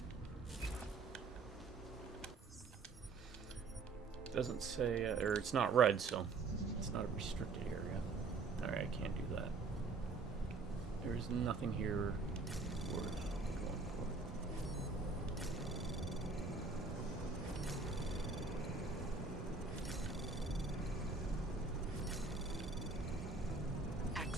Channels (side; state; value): left; quieter; 4.1 dB